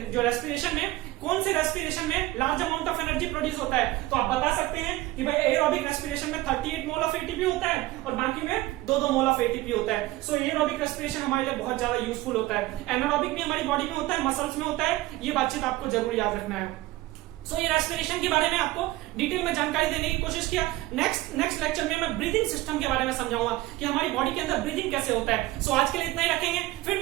जो रेस्पिरेशन में, कौन से रेस्पिरेशन में large amount of energy produce होता है, तो आप बता सकते हैं कि भाई एरोबिक रेस्पिरेशन में 38 मोल ऑफ एटीपी होता है और बाकी में 2-2 मोल ऑफ एटीपी होता है। सो एरोबिक रेस्पिरेशन हमारे लिए बहुत ज्यादा यूजफुल होता है। एनारोबिक भी हमारी बॉडी में होता है, मसल्स में होता है, ये बातचीत आपको जरूर याद रखना है। सो ये रेस्पिरेशन के बारे में आपको डिटेल में जानकारी देने की कोशिश किया। नेक्स्ट लेक्चर में मैं ब्रीदिंग सिस्टम के बारे में समझाऊंगा कि हमारी बॉडी के अंदर ब्रीदिंग कैसे होता है। सो आज के लिए इतना ही रखेंगे, फिर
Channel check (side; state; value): left; quieter; 17.9 dB